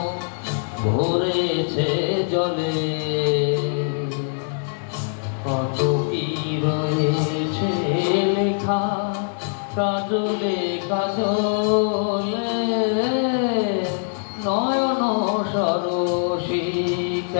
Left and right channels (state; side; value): silent; right; digital silence